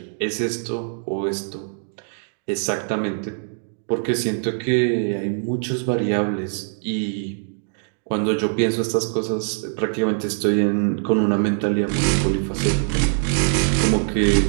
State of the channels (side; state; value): left; silent; digital silence